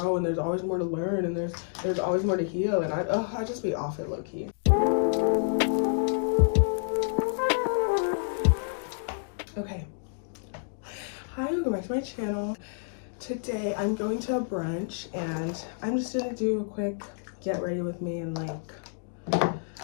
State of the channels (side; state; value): right; silent; digital silence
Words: and there's always more to learn, and there's always more to heal, and I just be off it low-key. Okay, hi, welcome back to my channel. Today I'm going to a brunch, and I'm just gonna do a quick get ready with me and